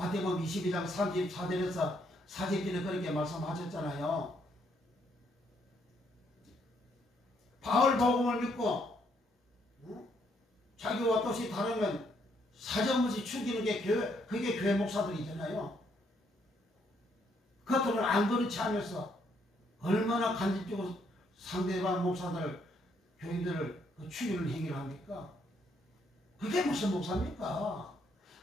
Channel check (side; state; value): both; normal; correlation 0.72